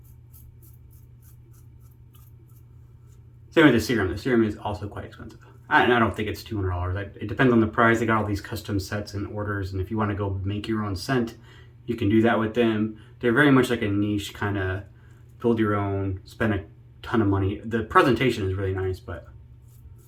Same with the serum. The serum is also quite expensive. And I don't think it's $200. It depends on the price. They got all these custom sets and orders, and if you want to go make your own scent, you can do that with them. They're very much like a niche kind of build your own, spend a ton of money. The presentation is really nice, but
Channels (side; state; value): both; identical; correlation 1.00